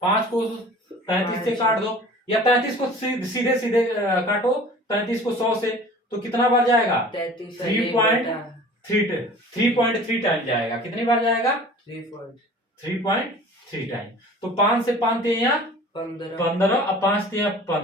5 को 33 से काट दो, या 33 को सीधे सीधे काटो 33 को 100 से, तो कितना बार जाएगा 3.3 टाइम जाएगा। कितनी बार जाएगा 3.3 टाइम। तो 5 से 5 यहाँ 15, अब 5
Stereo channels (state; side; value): normal; both; correlation 0.44